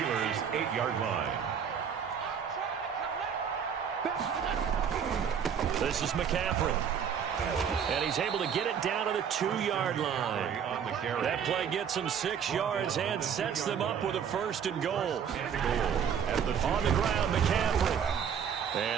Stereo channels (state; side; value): quieter; left; 7.7 dB